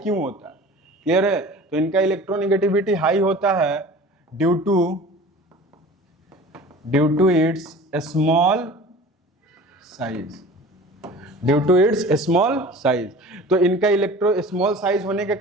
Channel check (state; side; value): normal; both; correlation 0.41